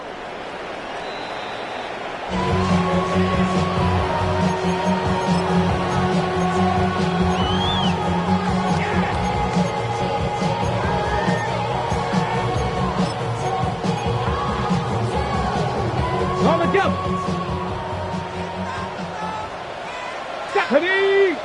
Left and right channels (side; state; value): both; identical; correlation 1.00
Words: On the jump. Stephanie.